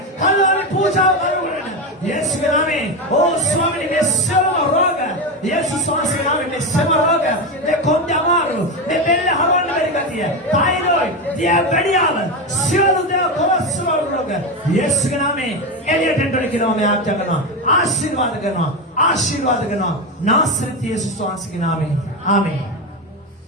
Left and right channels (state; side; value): normal; both; correlation 0.14